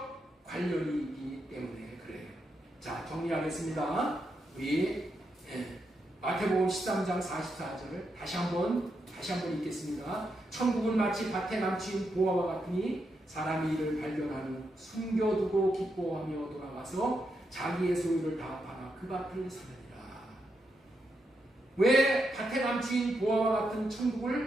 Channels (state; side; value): normal; both; correlation 0.83